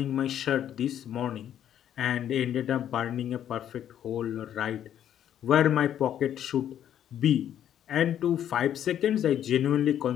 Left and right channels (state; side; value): quieter; right; 10.3 dB